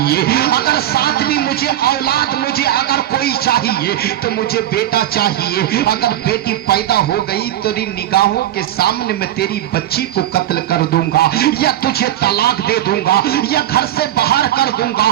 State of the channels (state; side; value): quieter; left; 12.6 dB